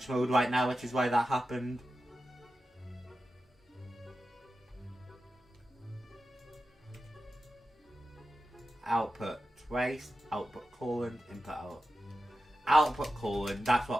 mode right now, which is why that happened. Output trace, output colon, input out. Output colon, that's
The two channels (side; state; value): both; normal; correlation 0.91